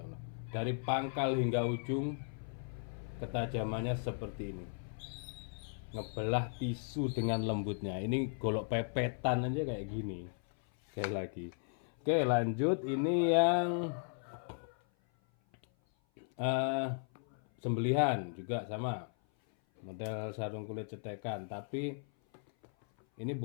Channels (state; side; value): silent; right; 54 dB below the other